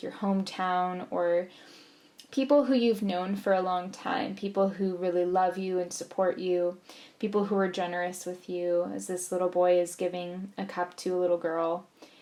your hometown or people who you've known for a long time, people who really love you and support you, people who are generous with you, as this little boy is giving a cup to a little girl.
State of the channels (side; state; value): both; identical; correlation 1.00